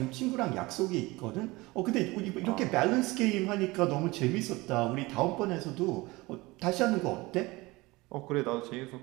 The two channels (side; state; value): left; quieter; 22.0 dB